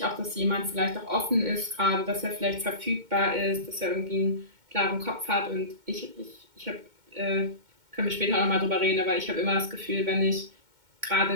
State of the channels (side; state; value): left; late; 2.2 ms